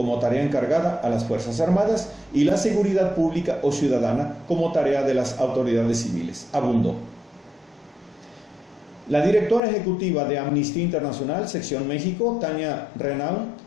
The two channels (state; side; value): drops out; right; at 9.6 s